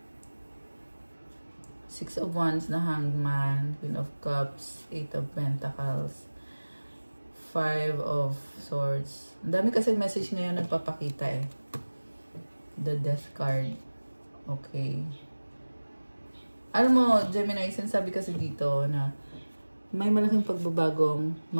Six of Wands na Hangman, Queen of Cups, Eight of Pentacles, Five of Swords. Ang dami kasi message ngayon nagpapakita eh. The Death card. Okay. Alam mo, Gemini, sinasabi kasi dito na may malaking pagbabagong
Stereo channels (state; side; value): inverted; both; correlation -1.00